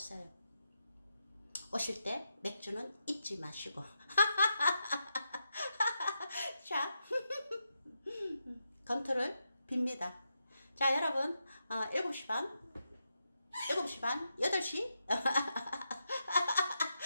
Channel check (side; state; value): both; inverted; correlation -0.85